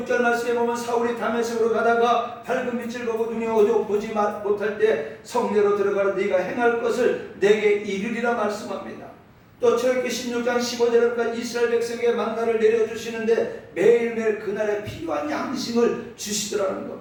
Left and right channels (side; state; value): both; identical; correlation 1.00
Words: 6절 말씀에 보면 사울이 다메섹으로 가다가 밝은 빛을 보고 눈이 어두워 보지 못할 때 성내로 들어가라 네가 행할 것을 내게 이르리라 말씀합니다. 또 출애굽기 16장 15절에 이스라엘 백성에게 만나를 내려주시는데 매일매일 그날에 필요한 양식을 주시더라는